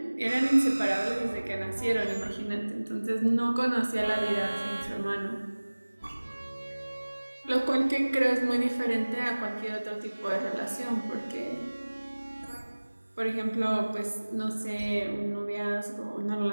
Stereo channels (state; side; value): inverted; both; correlation -1.00